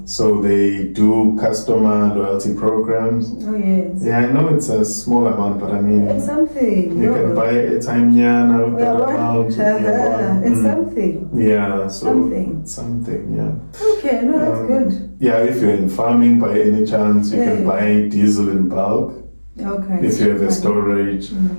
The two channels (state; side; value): inverted; both; correlation -1.00